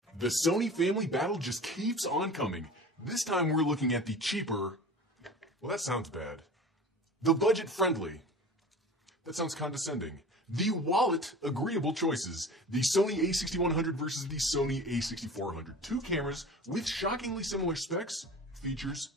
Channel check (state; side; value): normal; both; correlation 0.38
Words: The Sony family battle just keeps on coming. This time we're looking at the cheaper, well, that sounds bad. The budget-friendly. That sounds condescending. The wallet-agreeable choices. The Sony a6100 versus the Sony a6400. Two cameras with shockingly similar specs, features,